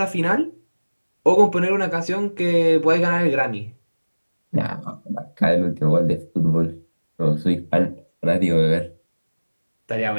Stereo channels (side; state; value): both; inverted; correlation -1.00